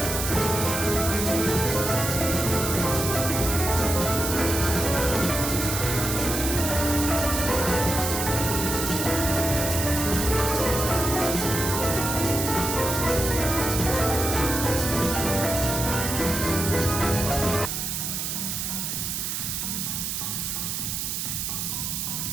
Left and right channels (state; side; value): noise; right; hiss, 3 dB below the sound